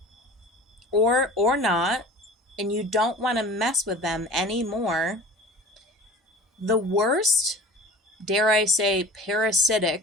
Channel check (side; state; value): both; normal; correlation 0.41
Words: or not, and you don't want to mess with them anymore. The worst, dare I say,